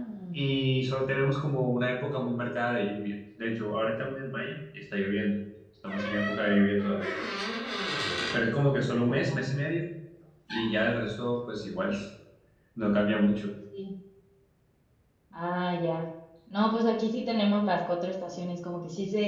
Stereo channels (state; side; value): identical; both; correlation 1.00